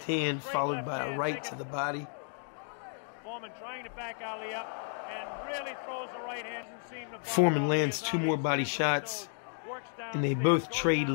hand followed by a right to the body. Foreman trying to back Ali up and really throws the right hand. Foreman lands 2 more body shots, and they both trade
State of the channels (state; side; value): silent; right; 56 dB below the other